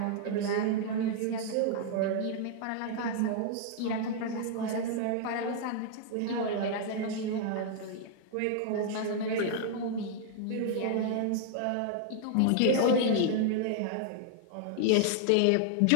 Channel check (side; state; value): both; different; correlation -0.01